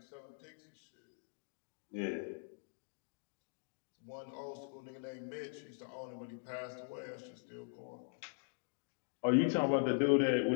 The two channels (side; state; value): right; silent; digital silence